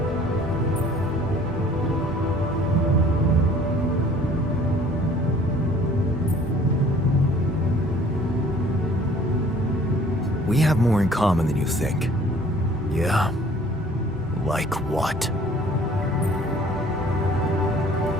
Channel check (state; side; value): normal; both; correlation 0.53